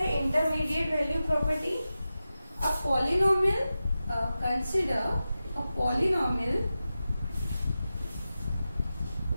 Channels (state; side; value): inverted; both; correlation -0.93